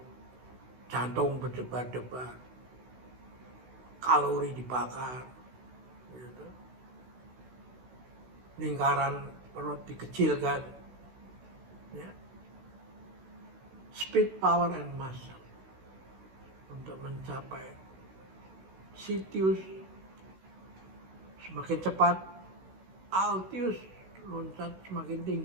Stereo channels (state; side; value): late; left; 16 ms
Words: jantung berdebar-debar, kalori dibakar, gitu. Lingkaran perut dikecilkan, ya. Speed, power, and muscle untuk mencapai Sitius semakin cepat, Altius loncat semakin